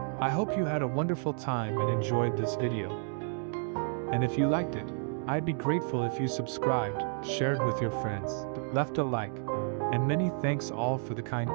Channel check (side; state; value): left; silent; 57 dB below the other